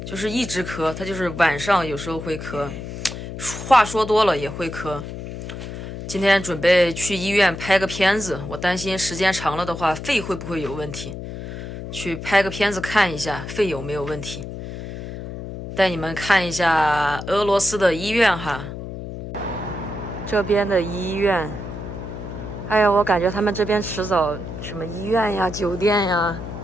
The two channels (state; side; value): noise; left; hum, 8 dB below the sound